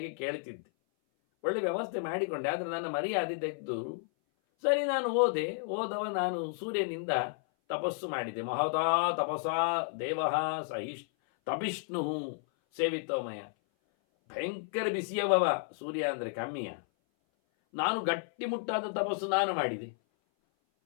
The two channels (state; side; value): silent; right; 56 dB below the other